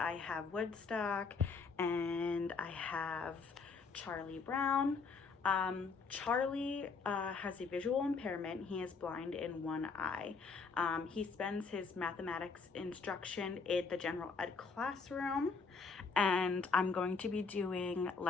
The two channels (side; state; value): right; quieter; 4.8 dB